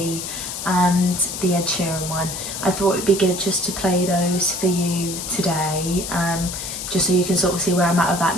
and the Ed Sheeran one, I thought it'd be good just to play those for you today, just so you can sort of see where I'm at with that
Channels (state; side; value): noise; left; hiss, 6 dB below the sound